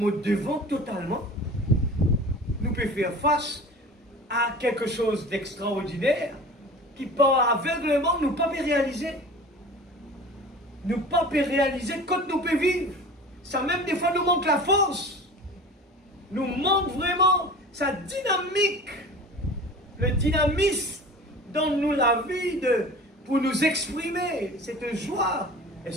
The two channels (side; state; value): both; normal; correlation 0.39